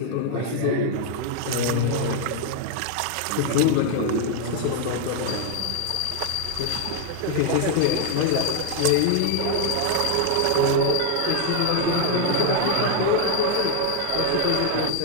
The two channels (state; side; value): different; both; correlation 0.00